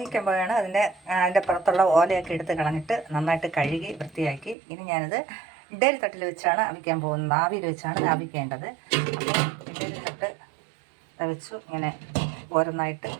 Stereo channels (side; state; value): left; drops out; at 4.5 s